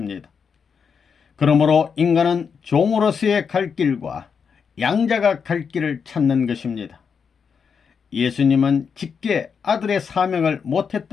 그러므로 인간은 종으로서의 갈 길과 양자가 갈 길을 찾는 것입니다. 예수님은 직계 아들의 사명을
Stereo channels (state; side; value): quieter; right; 6.3 dB